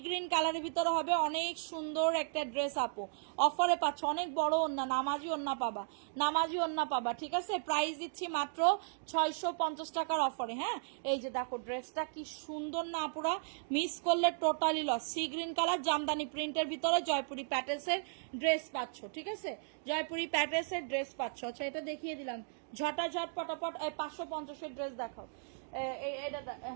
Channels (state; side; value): silent; left; digital silence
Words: গ্রিন কালারের ভিতরে হবে, অনেক সুন্দর একটা ড্রেস আপু। অফারে পাচ্ছ, অনেক বড় ওন্না, নামাজি ওন্না পাবা, নামাজি ওন্না পাবা, ঠিক আছে? প্রাইস দিচ্ছি মাত্র 650 টাকার অফারে। হ্যাঁ এই যে দেখো ড্রেসটা কি সুন্দর না আপুরা, মিস করলে totally loss. Sea green colour jamdani প্রিন্টের ভিতরে জয়পুরি প্যাটেলসের ড্রেস পাচ্ছ, ঠিক আছে? জয়পুরি প্যাটেলসের ড্রেস পাচ্ছ। আচ্ছা এটা দেখিয়ে দিলাম, ঝটাঝট পটাপট। 550-এর ড্রেস দেখাও,